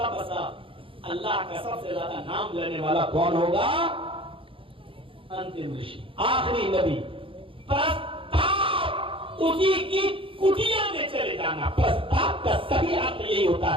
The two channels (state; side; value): late; left; 0.26 ms